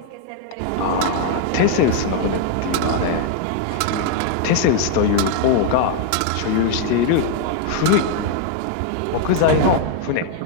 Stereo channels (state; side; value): different; both; correlation 0.00